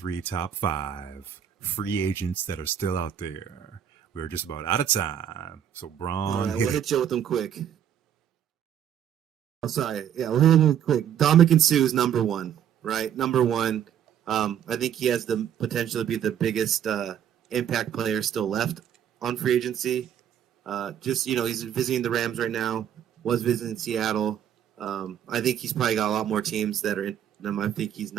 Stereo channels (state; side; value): quieter; left; 9.5 dB